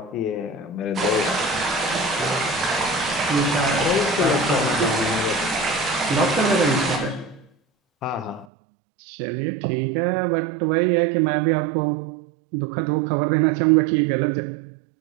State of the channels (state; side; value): drops out; left; at 8.5 s